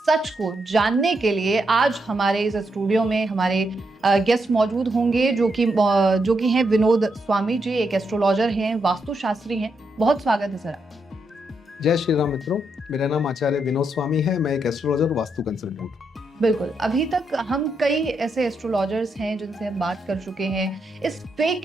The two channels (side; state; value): both; normal; correlation 0.81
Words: को जानने के लिए आज हमारे इस स्टूडियो में हमारे गेस्ट मौजूद होंगे, जो कि हैं विनोद स्वामी जी, एक एस्ट्रोलॉजर हैं, वास्तुशास्त्री हैं। बहुत स्वागत है सर। जय श्री राम मित्रों, मेरा नाम आचार्य विनोद स्वामी है। मैं एक एस्ट्रोलॉजर, वास्तु कंसल्टेंट। बिल्कुल, अभी तक हम कई ऐसे एस्ट्रोलॉजर्स हैं जिनसे हम बात कर चुके हैं। इस